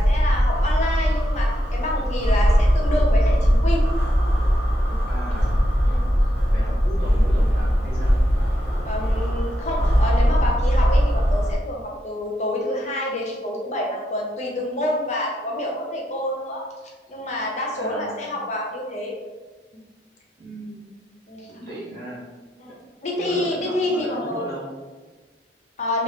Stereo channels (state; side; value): normal; both; correlation 0.81